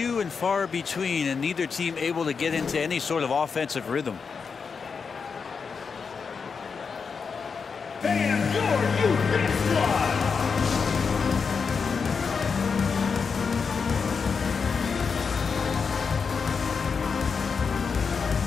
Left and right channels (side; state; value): right; quieter; 5.6 dB